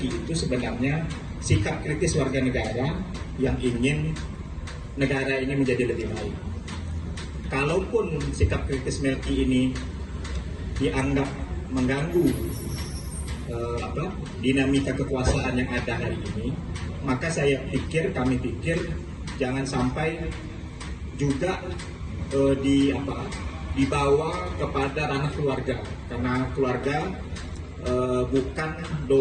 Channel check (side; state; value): both; identical; correlation 1.00